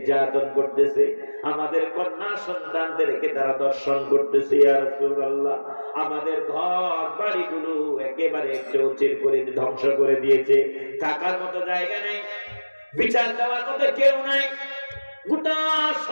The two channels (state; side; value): inverted; both; correlation -1.00